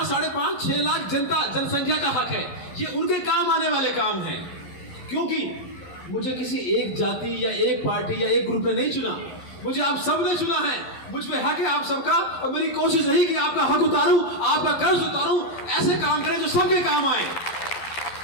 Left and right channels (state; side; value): late; right; 12 ms